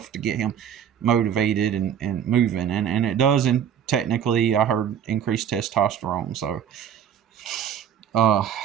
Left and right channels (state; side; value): quieter; left; 8.9 dB